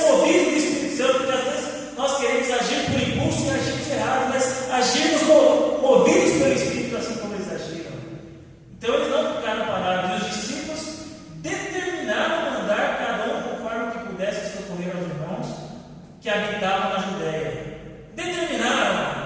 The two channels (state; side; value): identical; both; correlation 1.00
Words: do Espírito Santo, porque às vezes nós queremos agir por impulso e agimos errado, mas agirmos movidos pelo Espírito, assim como eles agiram. Então eles não ficaram parados. E os discípulos determinaram mandar cada um conforme que pudesse socorrer aos irmãos que habitavam na Judéia.